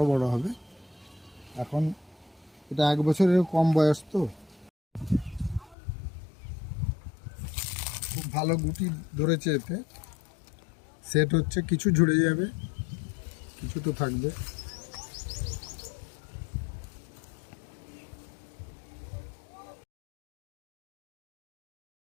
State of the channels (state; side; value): drops out; right; at 5.8 s